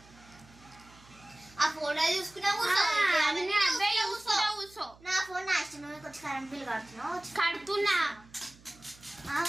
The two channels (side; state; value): right; noise; hum, 25 dB below the sound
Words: ఆ ఫోటో చూసుకున్నా కూర్చో. నా ఫోన్ నా ఇష్టం. కొంచెం కరెంట్ బిల్ కడుతున్నా.